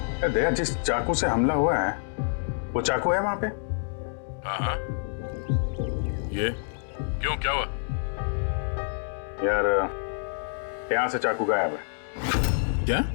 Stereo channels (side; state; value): right; silent; digital silence